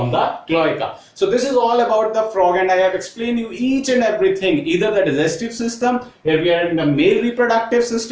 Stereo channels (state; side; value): identical; both; correlation 1.00